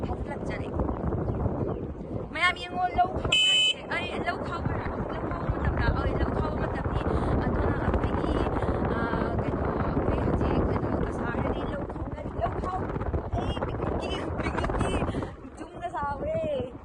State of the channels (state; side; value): identical; both; correlation 1.00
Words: phatlak jare mayam yengo low khau ma tam ni adona apni ke no koi haji ke no ka sare ni low khau picnic ki jum da sawe